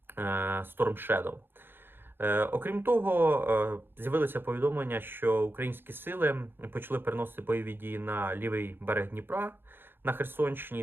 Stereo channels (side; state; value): left; late; 0.10 ms